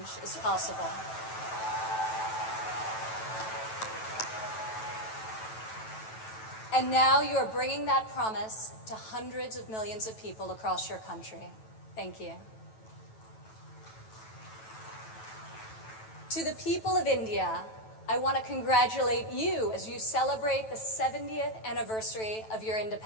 is possible. And now you are bringing that promise to hundreds of millions of people across your country. Thank you. To the people of India, I want to congratulate you as you celebrate the 70th anniversary of your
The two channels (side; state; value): right; late; 9.1 ms